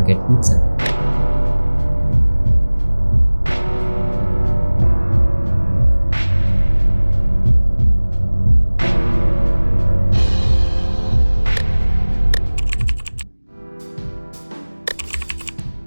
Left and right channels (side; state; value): both; inverted; correlation -1.00